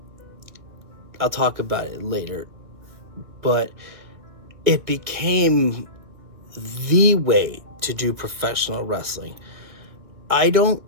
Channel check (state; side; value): late; left; 1.8 ms